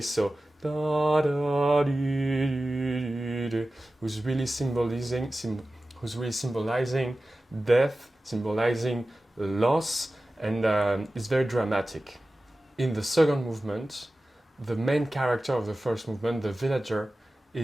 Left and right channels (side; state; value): both; normal; correlation 0.95